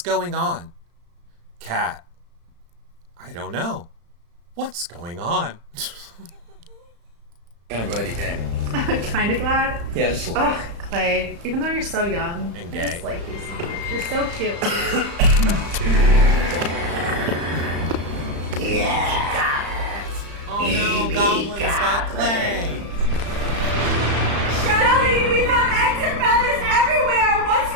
on? Kat, I don't know. What's going on? kind of glad you came. I'm kind of glad. Yeah, just a little. Ugh, Clay, even though you're so young And I gay. just like you so much. You're so cute. Oh no, goblins got Clay. Shelly, we found eggs and feathers everywhere. What's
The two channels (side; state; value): left; late; 35 ms